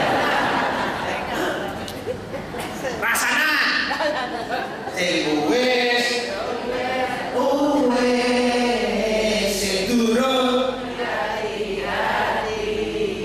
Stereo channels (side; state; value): both; identical; correlation 1.00